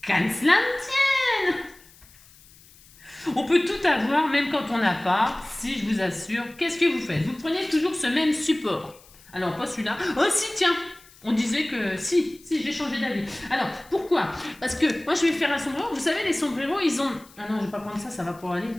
qu'à cela ne tienne! On peut tout avoir, même quand on n'a pas. Si, je vous assure. Qu'est-ce que vous faites? Vous prenez toujours ce même support. Alors, pas celui-là. Oh, si, tiens! On disait que si, j'ai changé d'avis. Alors, pourquoi? Parce que moi, je vais faire un sombrero. Vous savez, les sombreros, ils ont... Ah non, je vais pas prendre ça, ça va pas aller.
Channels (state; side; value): noise; left; hiss, 25 dB below the sound